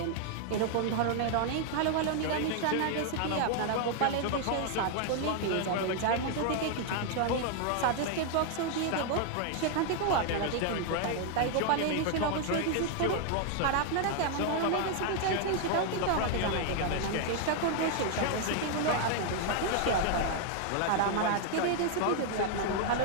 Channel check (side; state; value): both; different; correlation 0.00